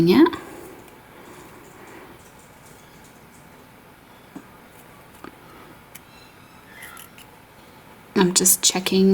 it. I'm just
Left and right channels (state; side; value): identical; both; correlation 1.00